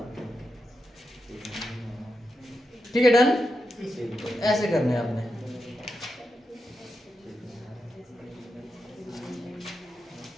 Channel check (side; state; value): both; normal; correlation 0.88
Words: ठीक है डन तो ऐसे करने हैं आपने